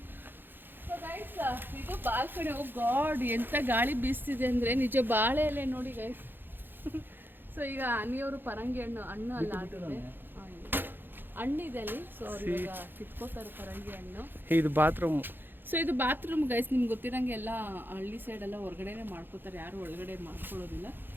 ಇದು ಬಾಲ್ಕನಿ. ಓ ಗಾಡ್, ಎಂತ ಗಾಳಿ ಬೀಸ್ತಿದೆ ಅಂದರೆ ನಿಜ. ಬಾಳೆ ಎಲೆ ನೋಡಿ ಗೈಸ್. ಸೊ ಈಗ ಅನಿಯವರು ಪರಂಗಿ ಹಣ್ಣು ಅಲ್ಲ ಆಗಿದೆ, ಹಣ್ಣಿದೆ ಅಲ್ಲಿ. ಸೊ ಅವ್ರು ಇವಾಗ ಕಿತ್ಕೋತಾರೆ ಪರಂಗಿ ಹಣ್ಣು. ಇದು ಬಾತ್ರೂಮ್. ಸೊ ಇದು ಬಾತ್ರೂಮ್ ಗೈಸ್. ನಿಮ್ಗೆ ಗೊತ್ತಿರಂಗೆ ಎಲ್ಲ ಹಳ್ಳಿ ಸೈಡೆಲ್ಲ ಹೊರಗಡೆನೆ ಮಾಡ್ಕೋತಾರೆ, ಯಾರು ಒಳಗಡೆ ಮಾಡ್ಕೊಳ್ಳೋದಿಲ್ಲ.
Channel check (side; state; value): left; late; 0.098 ms